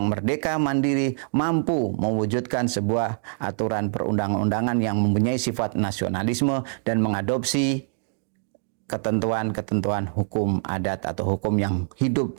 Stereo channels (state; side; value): silent; left; digital silence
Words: merdeka, mandiri, mampu mewujudkan sebuah aturan perundang-undangan yang mempunyai sifat nasionalisme dan mengadopsi ketentuan-ketentuan hukum adat atau hukum yang hidup